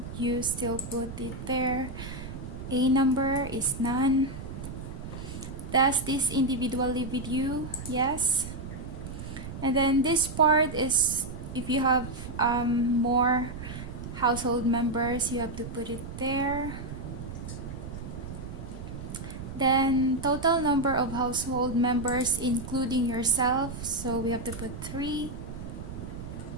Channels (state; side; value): noise; right; rumble, 9 dB below the sound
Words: you still put it there. A number is none. Does this individual live with you? Yes. And then this part is if you have more household members, you have to put it there. Then total number of household members including yourself, so we have to put 3.